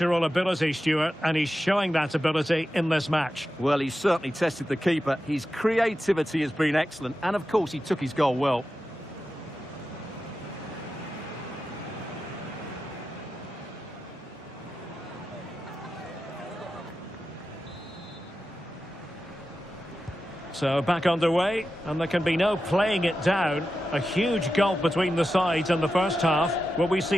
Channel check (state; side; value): normal; both; correlation 0.91